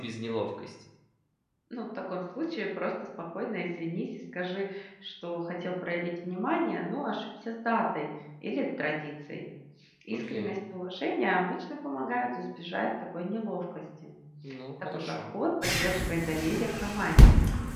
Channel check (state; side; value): identical; both; correlation 1.00